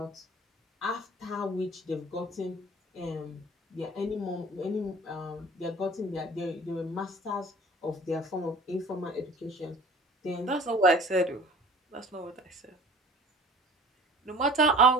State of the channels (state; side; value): normal; both; correlation 0.46